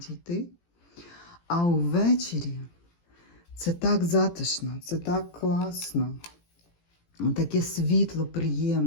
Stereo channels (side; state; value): right; late; 18 ms